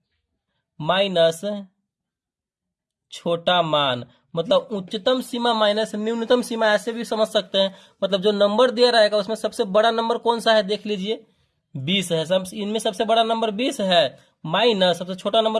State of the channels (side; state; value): both; identical; correlation 1.00